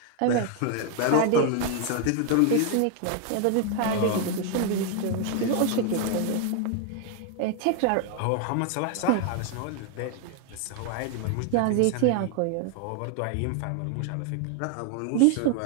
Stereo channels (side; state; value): both; different; correlation 0.00